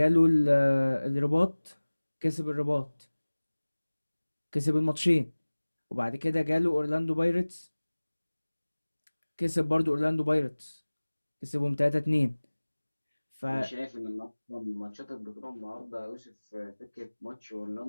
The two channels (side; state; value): both; inverted; correlation -1.00